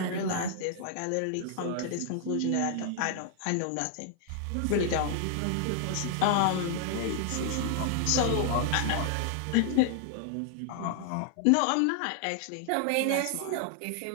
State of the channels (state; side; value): different; both; correlation 0.00